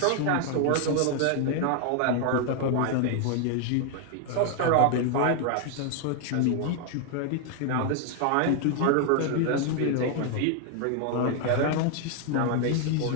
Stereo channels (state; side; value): different; both; correlation 0.00